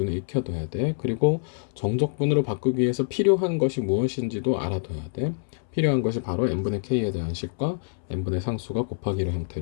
익혀둬야 돼. 그리고 정적분으로 바꾸기 위해서 필요한 것이 무엇인지도 알아둬야 돼. 필요한 것이 바로 n분의 k에 대한 식과 n분의 상수가 곱하기로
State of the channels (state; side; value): silent; right; 61 dB below the other